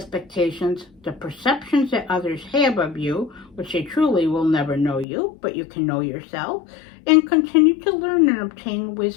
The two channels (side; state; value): right; drops out; at 5.1 s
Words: the perceptions that others have of you, which they truly will never know you, but you can know yourself, and continue to learn and obtain